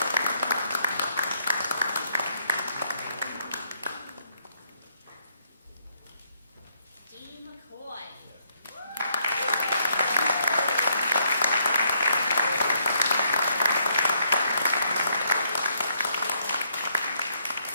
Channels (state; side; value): inverted; both; correlation -0.73